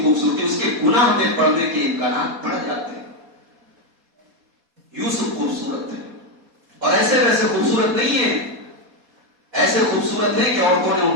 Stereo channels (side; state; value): left; late; 4.2 ms